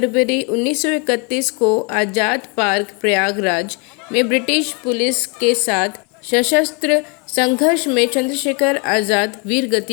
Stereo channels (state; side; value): quieter; right; 33.5 dB